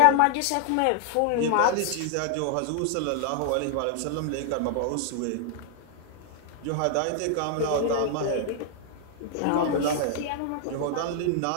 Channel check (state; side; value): different; both; correlation 0.00